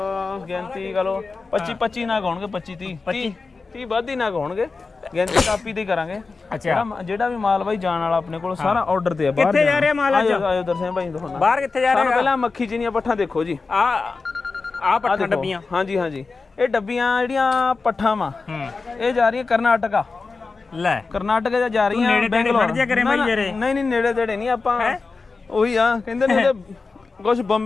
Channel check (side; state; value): right; quieter; 4.2 dB